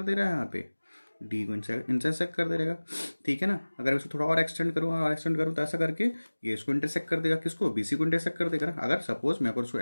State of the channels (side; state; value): both; inverted; correlation -1.00